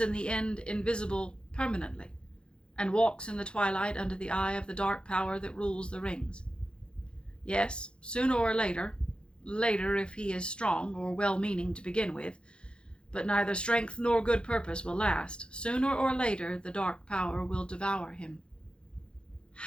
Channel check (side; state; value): right; late; 0.054 ms